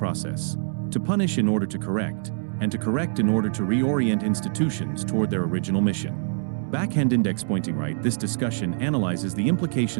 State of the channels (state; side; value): silent; left; 62 dB below the other